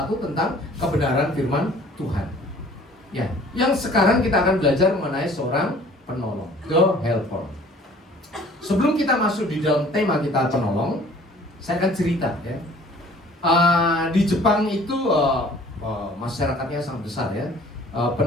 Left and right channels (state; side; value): normal; both; correlation 0.51